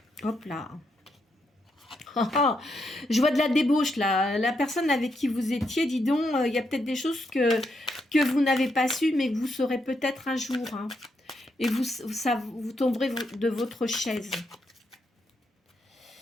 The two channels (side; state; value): both; normal; correlation 0.80